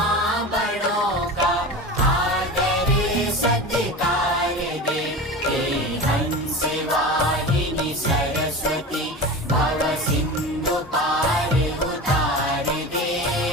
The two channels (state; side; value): normal; both; correlation 0.30